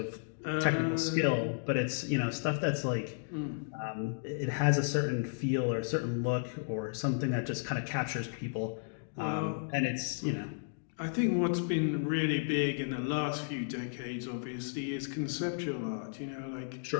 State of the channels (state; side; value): silent; right; digital silence